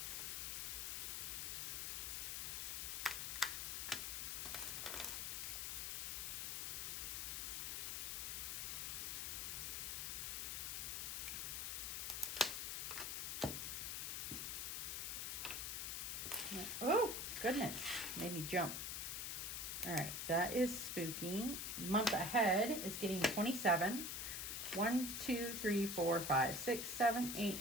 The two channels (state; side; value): noise; left; hiss, 2 dB below the sound